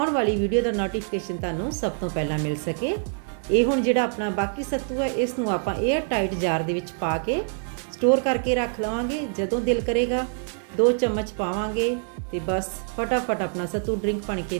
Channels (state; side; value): silent; left; 61 dB below the other